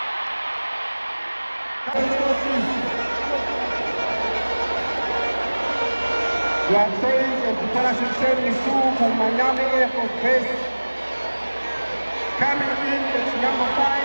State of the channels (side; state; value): both; inverted; correlation -1.00